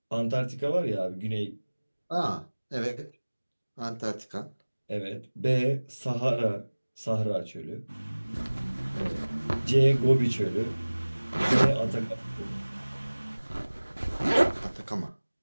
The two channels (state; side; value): inverted; both; correlation -1.00